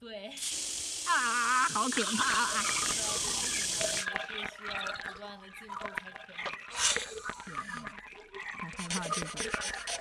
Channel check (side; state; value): both; identical; correlation 1.00